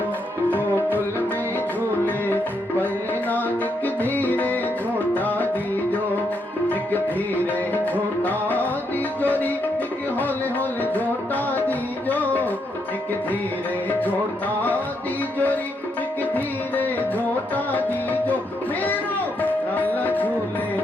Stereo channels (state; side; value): normal; both; correlation 0.78